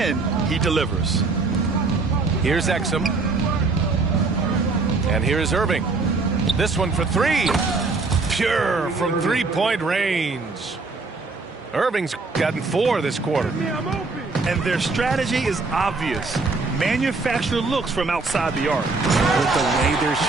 he delivers. Here's Exum. And here's Irving. This one for three. Pure from three-point range. Irving's gotten 4 this quarter. And their strategy is obvious. Manufacture looks from outside the arc. With the way they're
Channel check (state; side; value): quieter; left; 3.8 dB